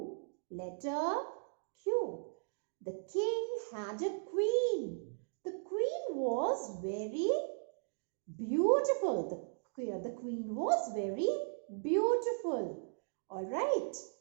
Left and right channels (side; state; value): left; silent; digital silence